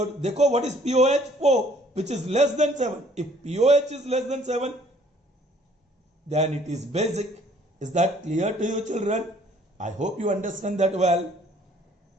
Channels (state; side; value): normal; both; correlation 0.59